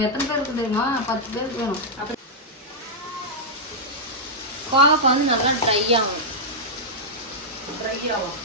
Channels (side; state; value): both; normal; correlation -0.08